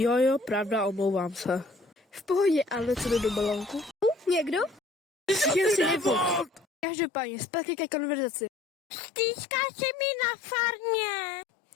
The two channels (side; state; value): right; drops out; at 6.9 s